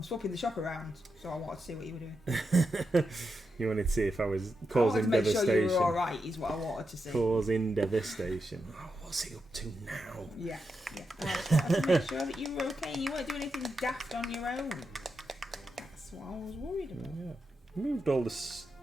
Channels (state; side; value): normal; both; correlation 0.86